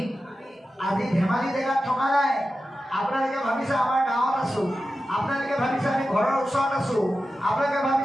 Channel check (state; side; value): normal; both; correlation 0.92